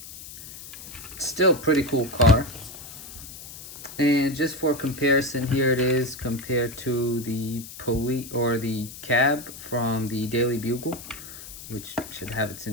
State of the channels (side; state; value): left; noise; hiss, 14 dB below the sound